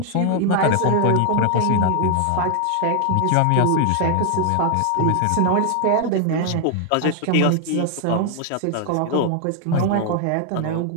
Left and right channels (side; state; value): both; different; correlation 0.00